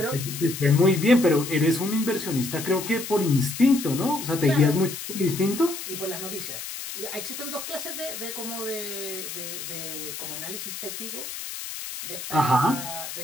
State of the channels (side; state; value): left; noise; hiss, 8 dB below the sound